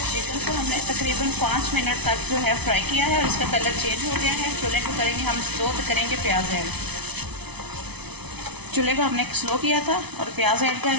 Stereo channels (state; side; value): late; left; 0.99 ms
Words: चिकन को हमने तकरीबन 5 मिनट तक जो है फ्राई किया है और इसका कलर चेंज हो गया है। चूल्हे को करेंगे हम स्लो, तो करेंगे प्याज ऐड। चूल्हे को हमने स्लो किया था और प्याज ऐड कर